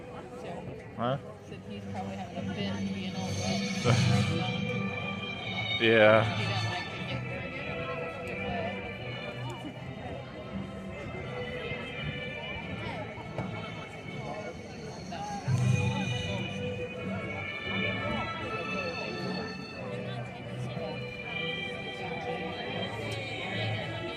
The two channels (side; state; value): both; identical; correlation 1.00